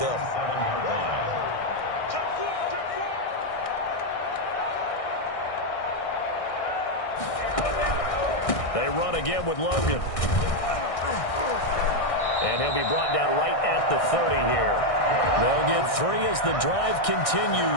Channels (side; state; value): right; late; 1.6 ms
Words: They run again with Logan. And he'll be brought down right at the 30 here. They'll get 3 as the drive